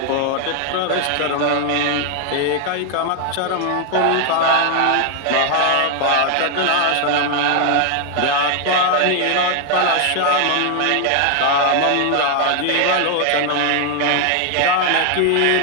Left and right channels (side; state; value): both; different; correlation 0.00